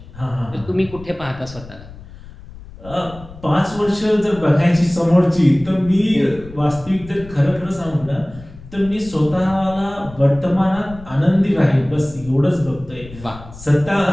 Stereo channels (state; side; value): noise; left; rumble, 17 dB below the sound